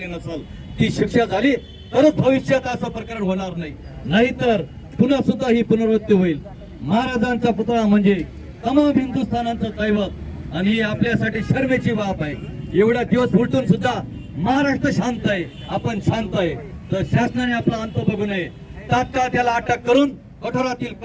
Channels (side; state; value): both; identical; correlation 1.00